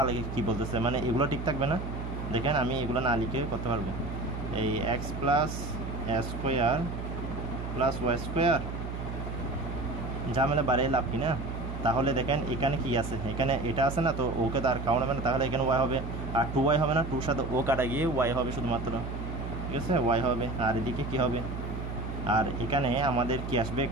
আলাদা কী বলতেছে, মানে এগুলো ঠিক থাকবে না, দেখেন আমি এগুলো না লিখে করতে পারবো, এই এক্স প্লাস এ স্কোয়ার প্লাস ওয়াই স্কোয়ার, ঝামেলা বাড়িয়ে লাভ কি না, তাহলে দেখেন এখানে কি আছে, এখানে এটা আছে না, তো ওকে তো আর কাউন্ট হবে না, তাহলে এখানে ওয়াই হবে, আর 2y হবে না, 2 সাথে ও কাটা গিয়ে ওয়াই হবে শুধুমাত্র, ঠিক আছে, ওয়াই হবে, আর এদিকে কি হবে, আর এখানে আমাদের কি আসবে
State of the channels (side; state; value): right; noise; hum, 6 dB below the sound